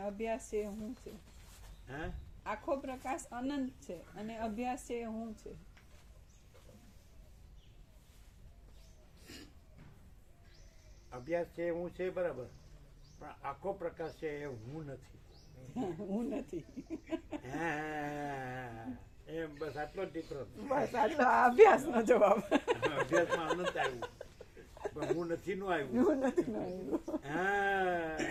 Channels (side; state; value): both; identical; correlation 1.00